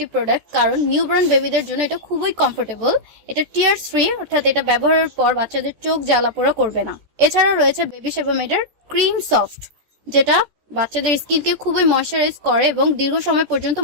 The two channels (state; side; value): late; left; 14 ms